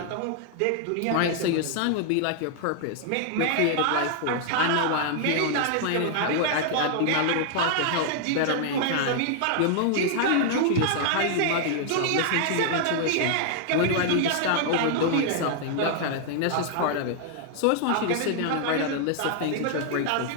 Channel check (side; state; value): both; different; correlation 0.00